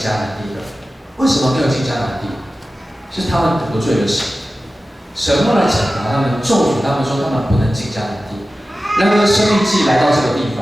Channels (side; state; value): both; normal; correlation 0.95